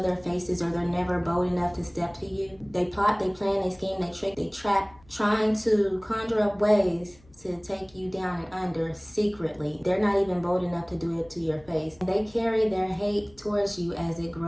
their faces, or they're never bold enough to step to you. They plot, they plan, they scheme, they trick, they trap, trying to conjure up ways to take you down and under secretly. They're not even bold enough to do it to your face. They carry their hate towards you as it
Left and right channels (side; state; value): left; noise; hum, 28 dB below the sound